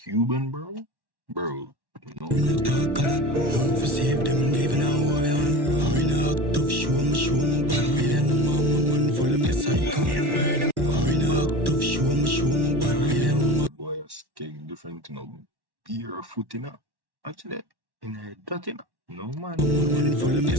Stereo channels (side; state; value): left; late; 1.1 ms